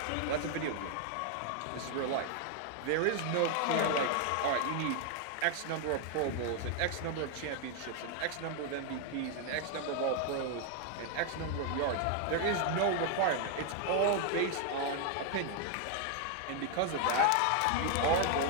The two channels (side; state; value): both; different; correlation 0.00